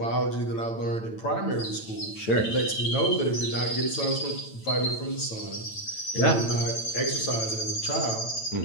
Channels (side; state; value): right; late; 9.0 ms